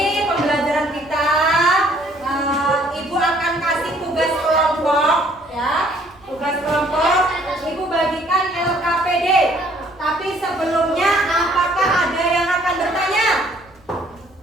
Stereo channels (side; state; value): right; noise; rumble, 29 dB below the sound